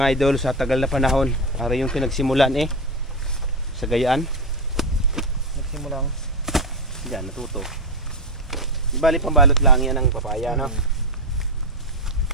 idol sa tagal na panahon. Para yung pinagsimulan sa Gayaan. Nagsimulang diyan natuto. Ibali pambalot lang yan ng papaya, no?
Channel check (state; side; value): normal; both; correlation 0.12